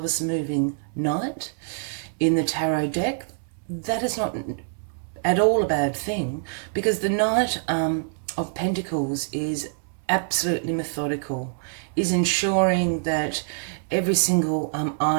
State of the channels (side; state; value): left; silent; 62 dB below the other